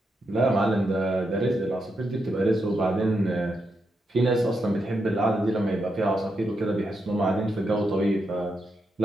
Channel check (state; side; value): normal; both; correlation 0.83